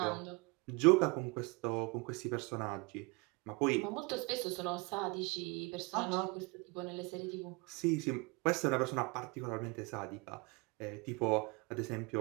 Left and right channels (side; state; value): left; quieter; 28.2 dB